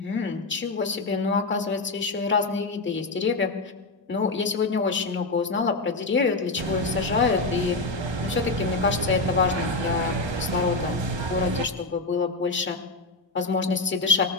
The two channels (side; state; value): right; quieter; 3.2 dB